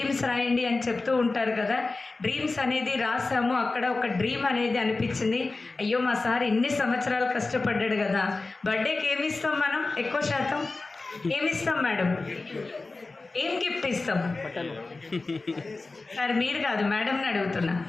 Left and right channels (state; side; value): quieter; right; 3.5 dB